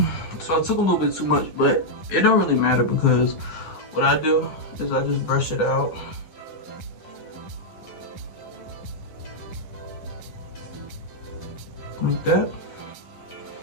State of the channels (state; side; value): late; right; 11 ms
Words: So I took a little bit too much, but it don't really matter because what I do is I just brush it out. Like that.